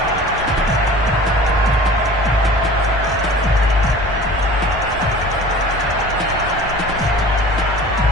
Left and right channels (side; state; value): both; normal; correlation 0.42